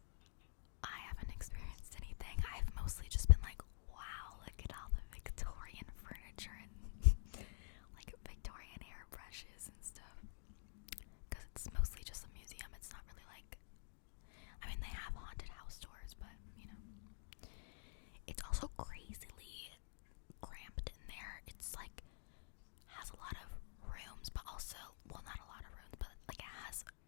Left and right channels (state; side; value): silent; right; digital silence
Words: I haven't experienced anything. I've mostly just been like, wow, look at all the Victorian furniture and like Victorian hairbrushes and stuff. Because it's mostly just a museum. It's not really like, I mean, they have haunted house tours, but you know, it's also crazily cramped in there. It's like has a lot of rooms, but also, well, not a lot of rooms, but like it has